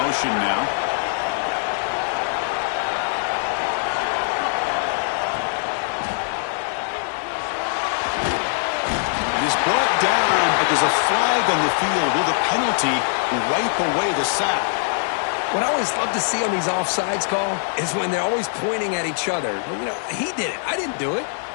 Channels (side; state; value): right; silent; digital silence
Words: now. It is brought down, but there's a flag on the field. Will the penalty wipe away the sack? What I always love to see on these offsides call is when they're always pointing at each other. Well, you know, he did it. I didn't do it.